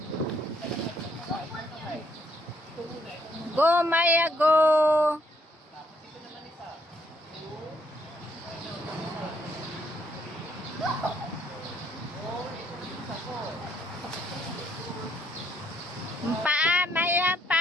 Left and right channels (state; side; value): normal; both; correlation 0.70